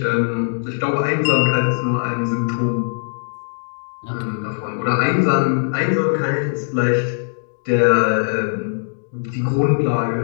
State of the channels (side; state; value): right; silent; digital silence